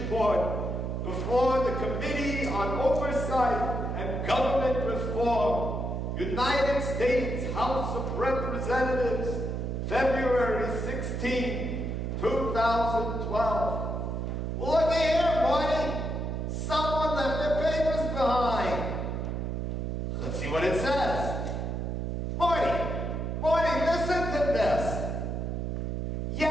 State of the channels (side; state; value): right; noise; hum, 2 dB below the sound